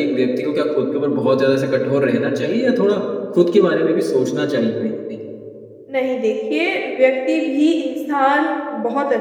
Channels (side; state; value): both; identical; correlation 1.00